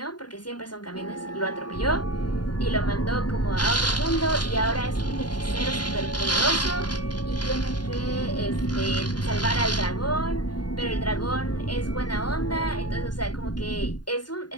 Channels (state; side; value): late; right; 0.70 ms